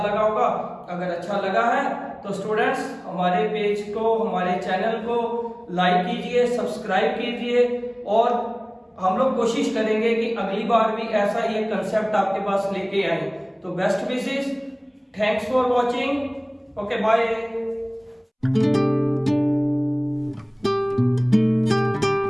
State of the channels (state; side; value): identical; both; correlation 1.00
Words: लगा होगा। अगर अच्छा लगा है तो स्टूडेंट्स हमारे पेज को, हमारे चैनल को लाइक कीजिए, सब्सक्राइब कीजिए, और हम लोग कोशिश करेंगे कि अगली बार भी ऐसा ही एक कंसेप्ट आपके पास लेके आए। तो best wishes, thanks for watching, okay bye.